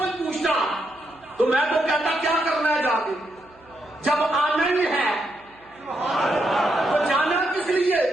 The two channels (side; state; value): right; noise; hum, 30 dB below the sound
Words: پوچھتا تو میں تو کہتا کیا کرنا ہے جا کے، جب آنا ہی ہے تو جانا کس لیے؟